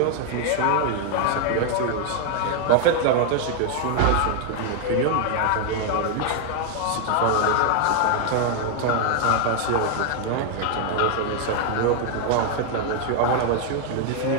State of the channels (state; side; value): different; both; correlation 0.00